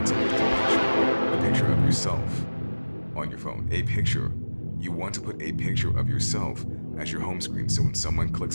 to put a picture of yourself on your phone. A picture. You want to put a picture of yourself as your home screen, so when someone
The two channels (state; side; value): inverted; both; correlation -1.00